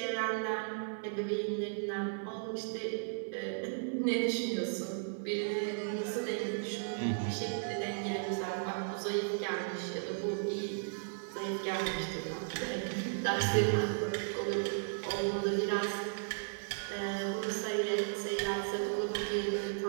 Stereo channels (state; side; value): silent; left; 54 dB below the other